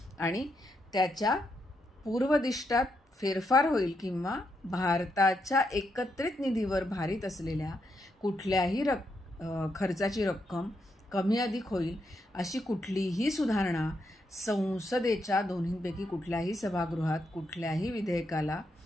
आणि त्याच्या पूर्वदिष्टात फेरफार होईल किंवा भारताच्या एकत्रित निधीवर भारित असलेल्या कुठल्याही खर्चाची रक्कम कमी अधिक होईल अशी कुठलीही सुधारणा संसदेच्या दोन्हींपैकी कुठल्याही सभागृहात कुठल्याही विधेयकाला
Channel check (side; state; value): both; normal; correlation 0.81